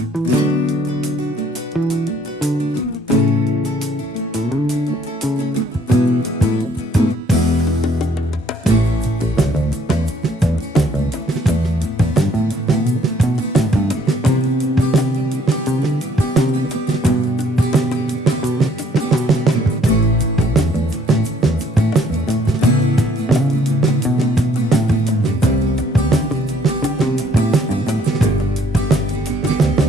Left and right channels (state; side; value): normal; both; correlation 0.62